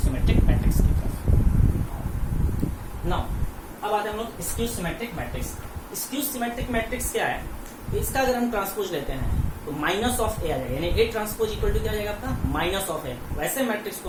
मैट्रिक्स की तरफ। नाउ अब आते हैं हम लोग skew symmetric matrix. Skew symmetric matrix क्या है? इसका अगर हम ट्रांसपोज लेते हैं तो माइनस ऑफ ए आ जाएगा, यानी A ट्रांसपोज इक्वल टू क्या जाएगा आपका? Minus of A. वैसे मैट्रिक्स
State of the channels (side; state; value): both; identical; correlation 1.00